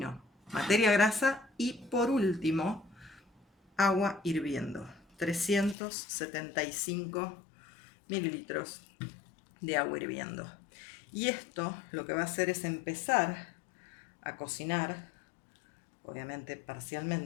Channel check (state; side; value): drops out; right; at 5.8 s